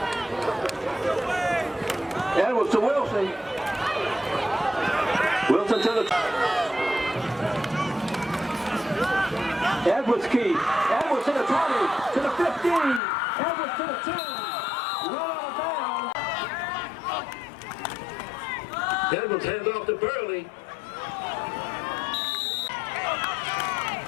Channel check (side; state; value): right; drops out; at 13.0 s